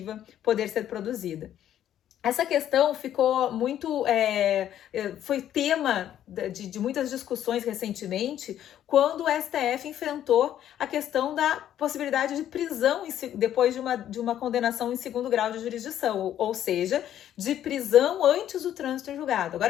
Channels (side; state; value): right; quieter; 11.1 dB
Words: poder ser produzida. Essa questão ficou muito, foi tema de muitas discussões recentemente, quando o STF enfrentou a questão da possibilidade de prisão depois de uma condenação em segundo grau de jurisdição, ou seja, de prisão antes do trânsito em julgado.